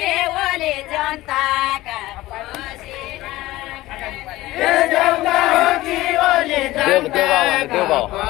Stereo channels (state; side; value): quieter; right; 17.5 dB